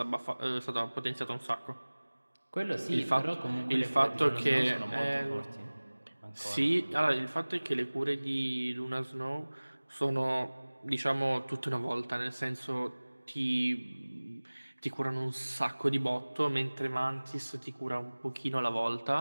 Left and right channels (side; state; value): both; inverted; correlation -1.00